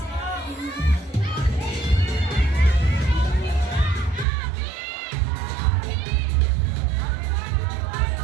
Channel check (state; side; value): drops out; left; at 4.2 s